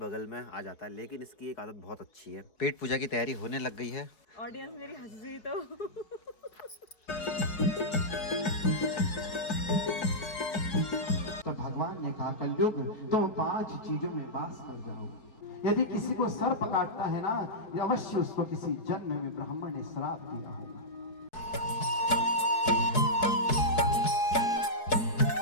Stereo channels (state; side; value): late; right; 4.7 ms